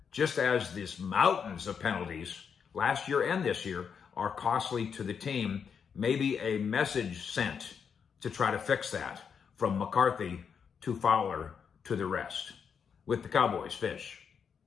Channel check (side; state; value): right; quieter; 6.8 dB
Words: just as these mountains of penalties last year and this year are costly to the team. Maybe a message sent to try to fix that from McCarthy to Fowler to the rest. With the Cowboys, Fish